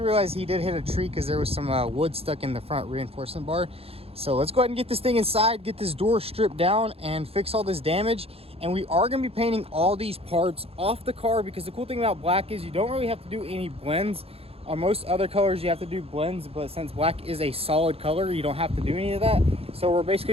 he did hit a tree because there was some wood stuck in the front reinforcement bar. So let's go ahead and get this thing inside, get this door stripped down and fix all this damage. And we are going to be painting all these parts off the car, because the cool thing about black is you don't really have to do any blends. On most other colors you have to do blends, but since black is a solid color, you don't have to do any of that. So we're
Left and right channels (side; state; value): left; late; 0.28 ms